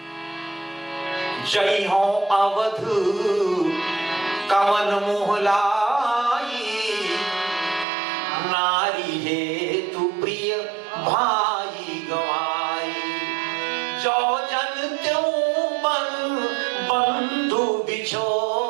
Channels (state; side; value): drops out; left; at 7.9 s